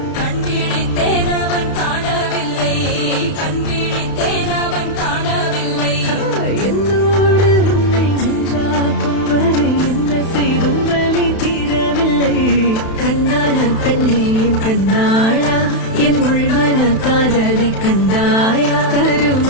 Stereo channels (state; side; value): late; right; 31 ms